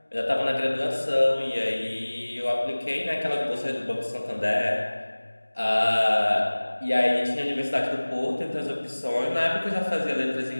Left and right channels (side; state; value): both; inverted; correlation -1.00